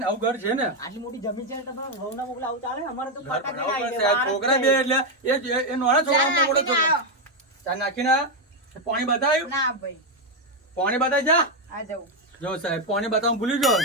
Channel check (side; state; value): both; normal; correlation 0.04